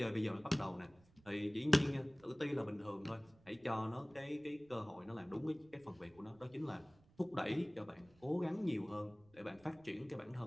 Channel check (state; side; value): noise; right; rumble, 28 dB below the sound